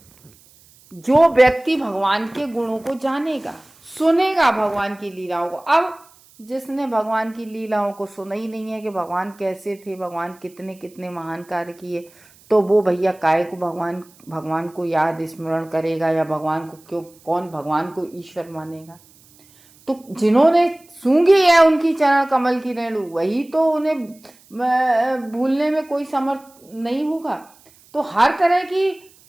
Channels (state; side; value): noise; right; hiss, 28 dB below the sound